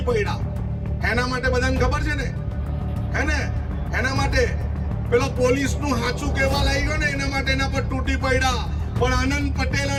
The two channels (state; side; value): identical; both; correlation 1.00